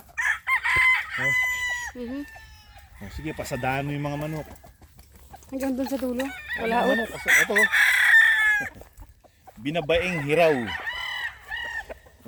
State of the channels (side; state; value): both; identical; correlation 1.00